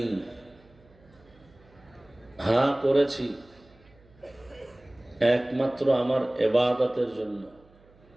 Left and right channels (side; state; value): right; noise; hum, 28 dB below the sound